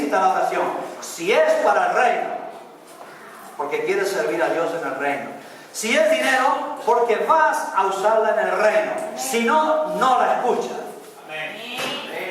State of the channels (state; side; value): identical; both; correlation 1.00